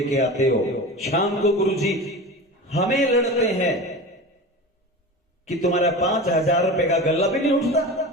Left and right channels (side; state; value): both; normal; correlation 0.30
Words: के आते हो। शाम को गुरुजी हमें लड़ते हैं कि तुम्हारा 5000 रुपए का गल्ला भी नहीं उठता।